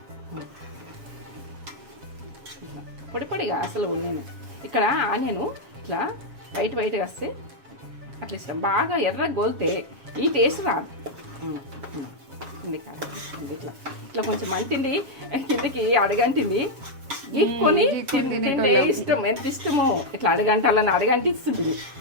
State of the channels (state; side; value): late; left; 7.3 ms